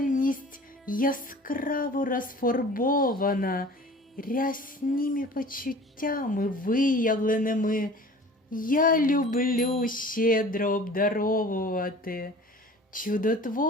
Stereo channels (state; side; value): normal; both; correlation 0.44